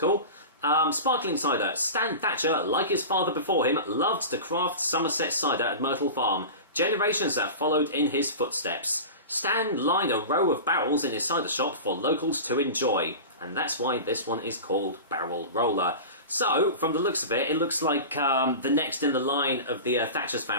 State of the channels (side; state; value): both; inverted; correlation -0.31